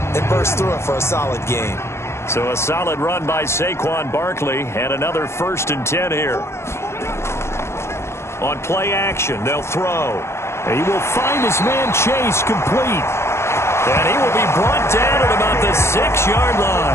bursts through it for a solid gain. So a solid run by Saquon Barkley, and another 1st and 10 here. On play action, they'll throw. He will find his man Chase complete. And he will be brought down at about the 6-yard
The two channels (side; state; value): right; late; 0.13 ms